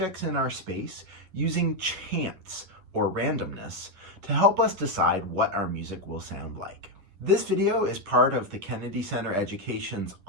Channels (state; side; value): late; left; 10 ms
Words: in our space using chance or randomness to help us decide what our music will sound like. This video is part of the Kennedy Center Education's